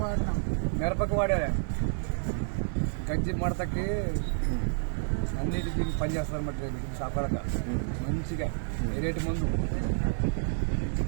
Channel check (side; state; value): left; silent; digital silence